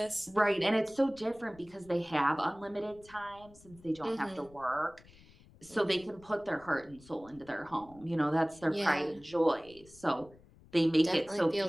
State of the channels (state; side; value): noise; left; rumble, 24 dB below the sound